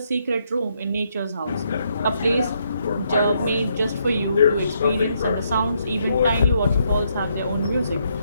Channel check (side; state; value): both; inverted; correlation -0.75